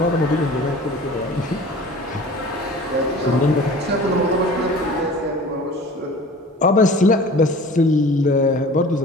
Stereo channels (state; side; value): normal; both; correlation 0.42